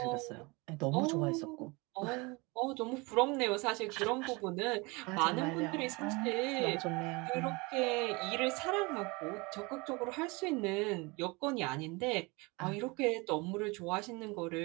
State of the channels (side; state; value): left; quieter; 26.4 dB